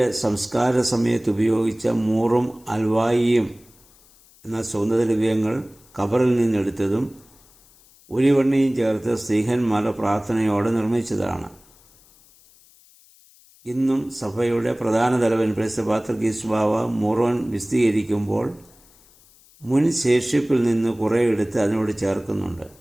സംസ്കാര സമയത്ത് ഉപയോഗിച്ച മൂറും അൽവായിയും എന്ന സുഗന്ധദ്രവ്യങ്ങൾ കബറിൽ നിന്നെടുത്തതും ഒലിവെണ്ണയും ചേർത്ത് സ്ത്രീഹന്മാരുടെ പ്രാർത്ഥനയോടെ നിർമ്മിച്ചതാണ്. ഇന്നും സഭയുടെ പ്രധാന തലവൻ പരിശുദ്ധ പാത്രികീസ് ബാവ മൂറോൻ വിശദീകരിക്കുമ്പോൾ മുൻ ശേഷിപ്പിൽ നിന്ന് കുറേ എടുത്ത് അതിനോട് ചേർക്കുന്നുണ്ട്.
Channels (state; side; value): noise; left; hiss, 28 dB below the sound